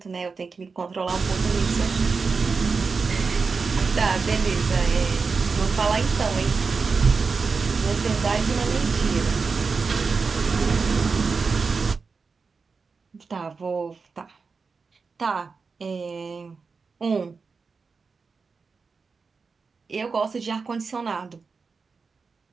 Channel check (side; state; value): left; quieter; 4.8 dB